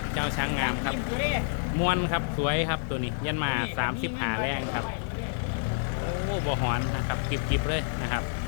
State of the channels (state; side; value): silent; right; 56 dB below the other